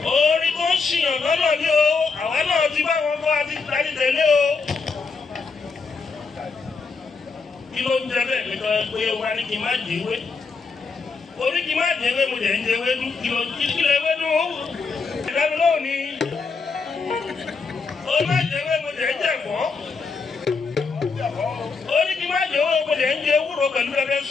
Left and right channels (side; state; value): right; quieter; 4.7 dB